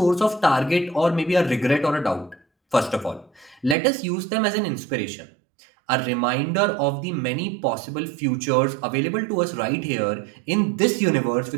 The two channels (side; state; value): left; drops out; at 3.8 s